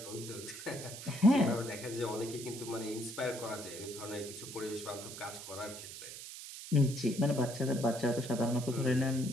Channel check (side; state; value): right; noise; hiss, 11 dB below the sound